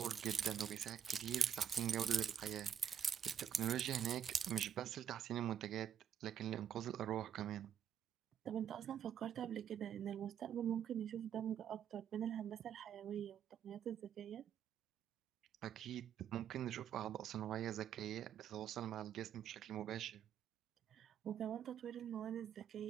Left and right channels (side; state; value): left; quieter; 8.7 dB